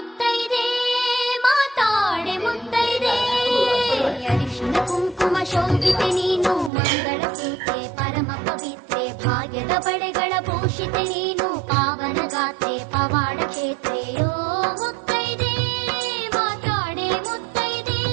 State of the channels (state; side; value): drops out; left; at 6.7 s